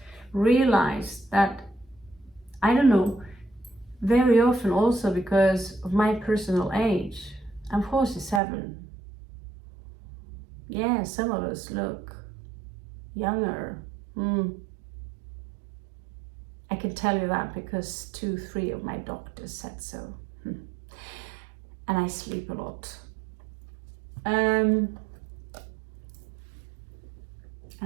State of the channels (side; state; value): left; drops out; at 8.4 s